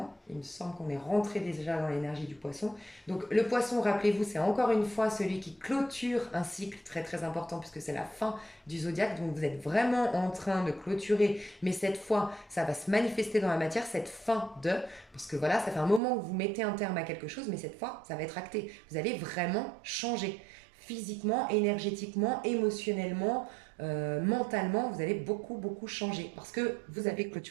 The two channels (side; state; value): left; drops out; at 16.0 s